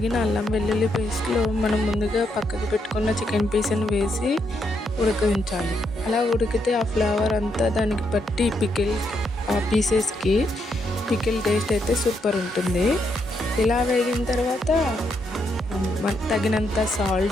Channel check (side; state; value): both; normal; correlation 0.78